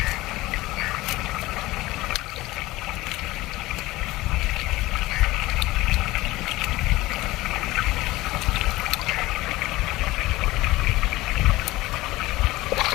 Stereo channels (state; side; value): quieter; right; 18.8 dB